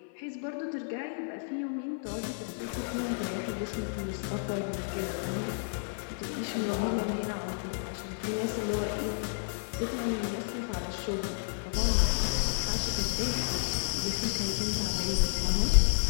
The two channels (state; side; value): silent; right; 57 dB below the other